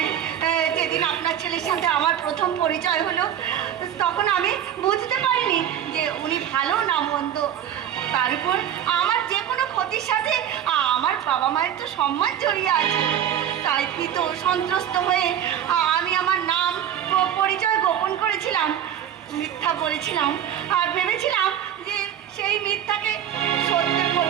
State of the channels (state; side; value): quieter; left; 10.0 dB